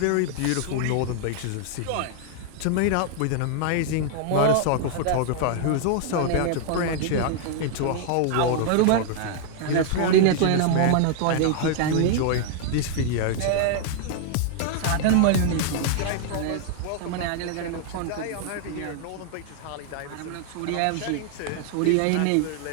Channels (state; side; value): different; both; correlation 0.00